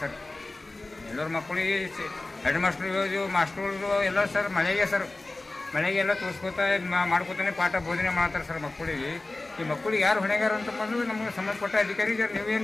ಸರ್. ಎಲ್ಲರ ಮಕ್ಕಳಿಗೆ ಹೆಡ್ ಮಾಸ್ಟರ್ಗಳು ಎಲ್ಲ ಸರ್ ಮಳೆಗೆಲ್ಲ ತೋರಿಸ್ಕೋತಾ ಮಾಡ್ಕೋತಾನೆ ಪಾಠ ಬೋಧನೆ ಮಾಡ್ತಾರೆ ಸರ್ ಮಕ್ಕಳಿಗೆ. ಈ ಮಕ್ಕಳಿಗೆ ಯಾರು ಹೊಣೆಗಾರ ಅಂತ ಬಂದು ನಮಗೆ ಸಂಬಂಧಪಟ್ಟ ಅಧಿಕಾರಿ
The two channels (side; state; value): right; quieter; 3.0 dB